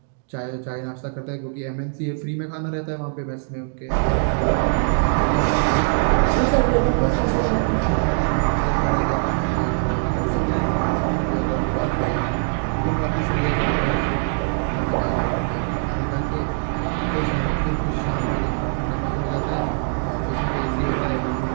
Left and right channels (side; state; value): left; silent; 64 dB below the other